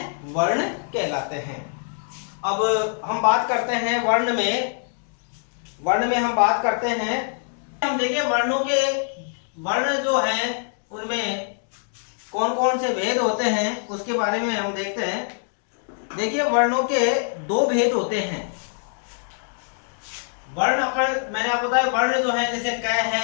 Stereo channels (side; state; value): right; silent; 63 dB below the other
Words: वर्ण कहलाते हैं। अब हम बात करते हैं वर्ण में हम बात करते हैं, हम देखें वर्णों के, वर्ण जो हैं उनमें कौन कौन से भेद होते हैं उसके बारे में हम देखते हैं। देखिए वर्णों के दो भेद होते हैं। वर्ण मैंने आपको बताया, वर्ण जो है जैसे क